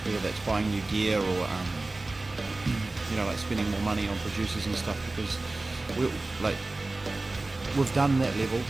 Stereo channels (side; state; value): left; quieter; 3.1 dB